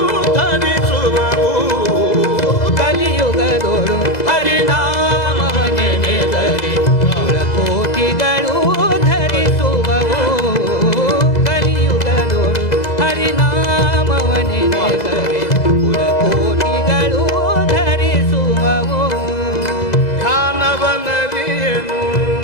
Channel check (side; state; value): right; late; 2.0 ms